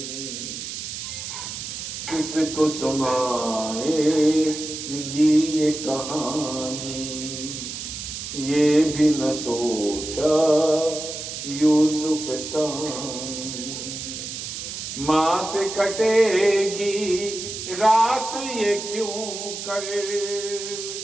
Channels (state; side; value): noise; right; hiss, 7 dB below the sound